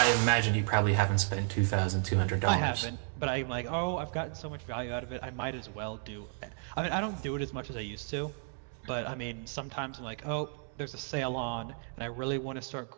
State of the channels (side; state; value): left; silent; 56 dB below the other